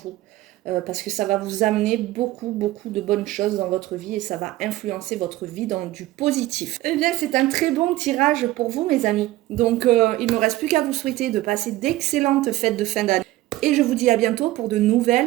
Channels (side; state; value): left; quieter; 16.6 dB